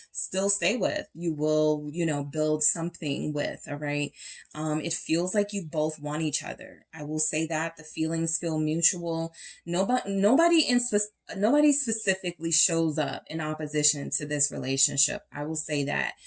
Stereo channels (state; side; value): identical; both; correlation 1.00